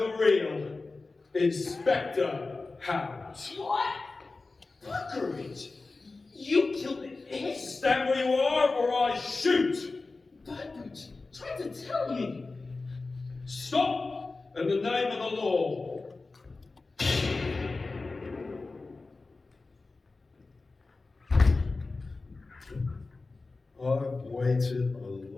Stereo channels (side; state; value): right; quieter; 3.6 dB